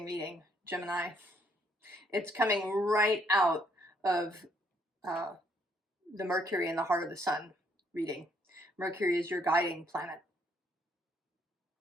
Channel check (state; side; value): normal; both; correlation 0.69